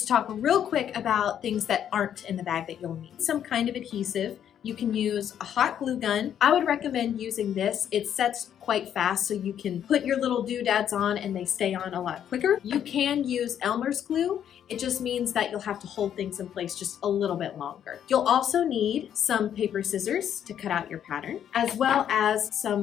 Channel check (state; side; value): quieter; right; 9.6 dB